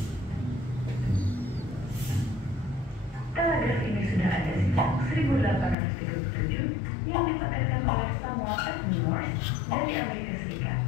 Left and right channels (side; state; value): right; drops out; at 5.8 s